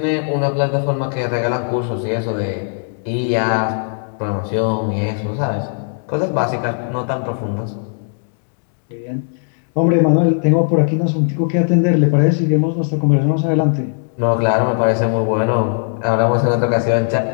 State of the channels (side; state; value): right; silent; digital silence